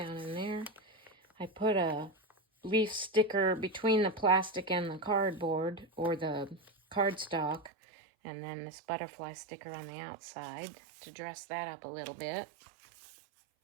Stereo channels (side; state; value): left; drops out; at 7.7 s